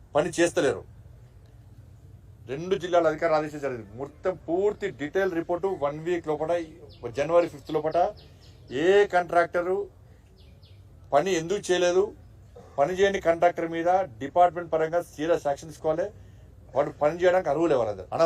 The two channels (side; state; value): both; identical; correlation 1.00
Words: పని చేస్తలేరు 2 జిల్లాల అధికారులు ఆదేశించారు జరిగింది. మొత్తం పూర్తి డీటెయిల్ రిపోర్టు 1 వీక్ లోపల జనవరి 5th లోపల ఏ కాంట్రాక్టరు పని ఎందుకు చేయలేదు, పని చేయని కాంట్రాక్టర్ మీద డిపార్ట్మెంట్ పరంగా సీరియస్ యాక్షన్ తీసుకోవాలి. వాడు పని చేయడానికి అర్హులే, వాళ్ళందరూ